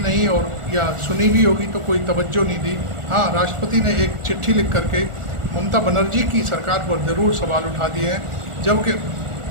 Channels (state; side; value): late; left; 1.4 ms